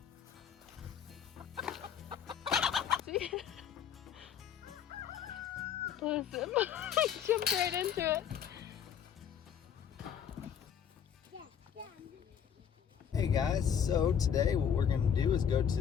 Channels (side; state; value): right; quieter; 8.2 dB